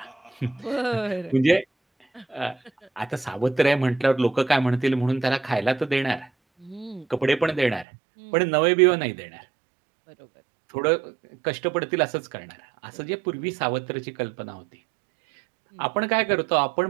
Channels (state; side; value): drops out; left; at 7.9 s